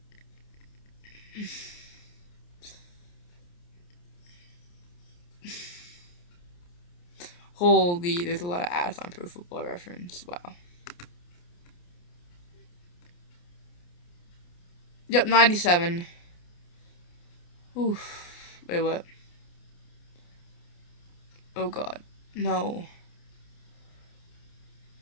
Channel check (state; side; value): late; right; 29 ms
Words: Holy, there's a lot of ads on Pro Football Reference. Wow. Yep, 97. Oof. Wait, what? Oh god. No.